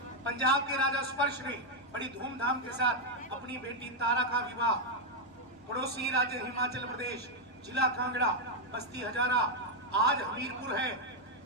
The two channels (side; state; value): both; normal; correlation 0.01